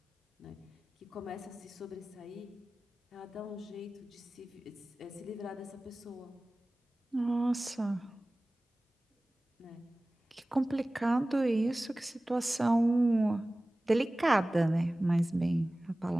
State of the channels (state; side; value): normal; both; correlation 0.98